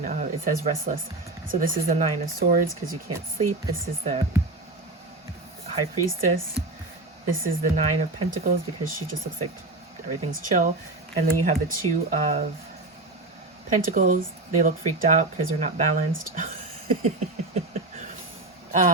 of, it says restless. So this is the 9 of Swords, because you can't sleep. This is the High Priestess. This is the 9 of Pentacles, because she just looks like everything's chill. And then you have the 2 of Pentacles. They look freaked out because they're not balanced.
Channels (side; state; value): left; quieter; 3.0 dB